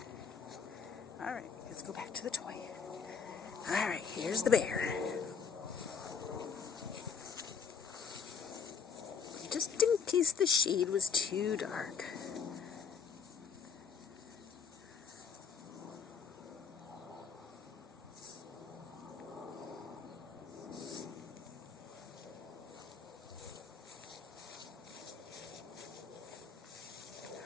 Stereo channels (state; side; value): quieter; right; 6.4 dB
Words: All right, let's go back to the toy. All right, here's the bear. Just in case the shade was too dark.